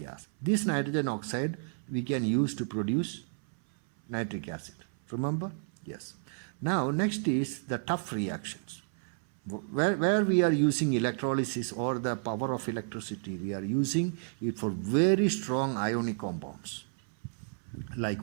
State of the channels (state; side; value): silent; left; 57 dB below the other